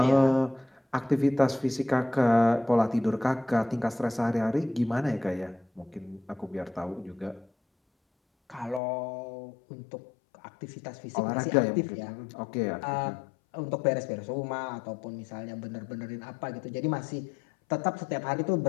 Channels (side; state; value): right; drops out; at 8.8 s